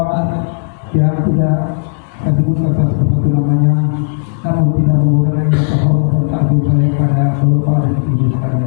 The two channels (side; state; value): right; silent; digital silence